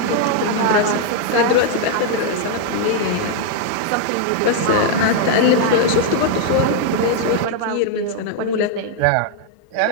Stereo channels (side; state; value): both; different; correlation 0.00